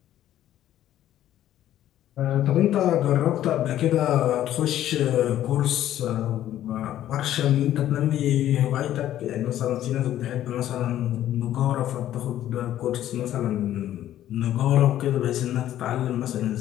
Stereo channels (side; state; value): right; quieter; 12.3 dB